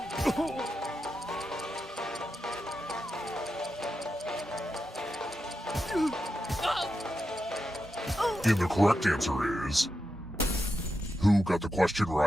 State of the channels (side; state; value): both; normal; correlation 0.88